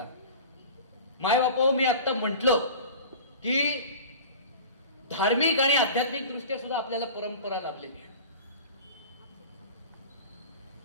माय बापा, मी आता म्हटलं की धार्मिक आणि आध्यात्मिक दृष्ट्या सुद्धा आपल्याला परंपरा लाभलेली आहे.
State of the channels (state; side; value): inverted; both; correlation -0.38